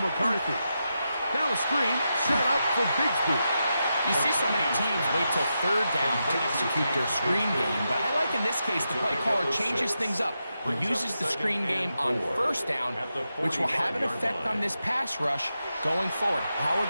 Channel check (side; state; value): both; inverted; correlation -0.87